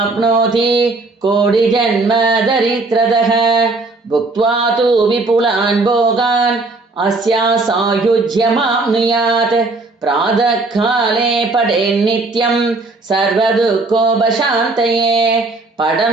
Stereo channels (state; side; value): quieter; left; 3.4 dB